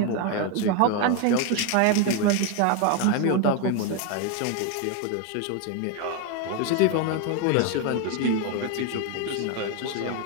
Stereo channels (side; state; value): both; different; correlation 0.01